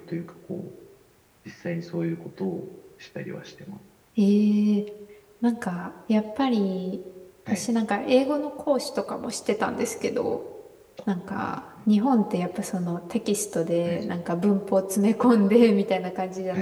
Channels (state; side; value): identical; both; correlation 1.00